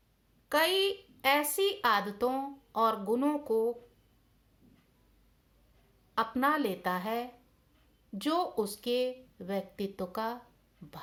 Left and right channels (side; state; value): both; identical; correlation 1.00